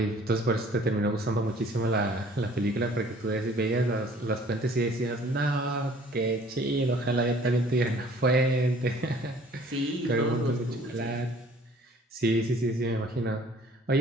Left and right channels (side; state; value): both; normal; correlation 0.54